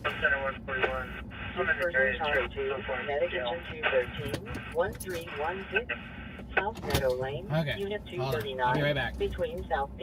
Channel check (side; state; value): both; identical; correlation 1.00